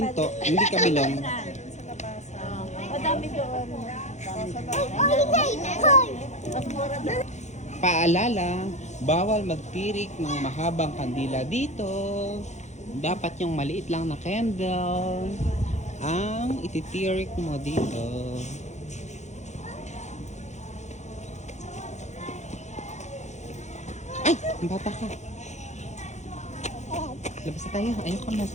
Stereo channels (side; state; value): right; late; 0.33 ms